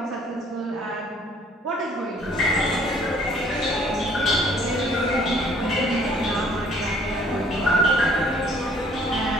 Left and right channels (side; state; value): both; normal; correlation 0.58